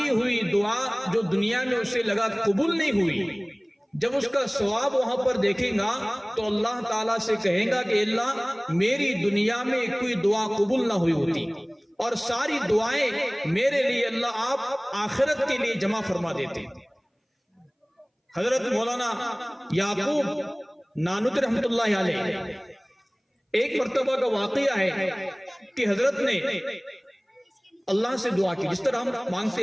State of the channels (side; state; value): both; identical; correlation 1.00